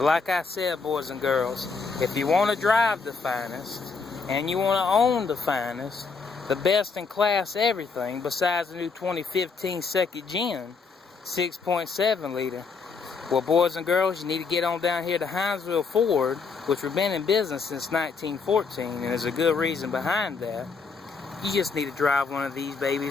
like I said, boys and girls, if you want to drive the finest, and you want to own the finest, the best in class everything, besides the new 2015 second gen 6.7 liter, well, boys and girls, you need to get on down here to Hinesville Ford, which we've been in business since 1914, and there's a good reason behind that. You just need to drive one of these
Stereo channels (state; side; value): quieter; right; 4.8 dB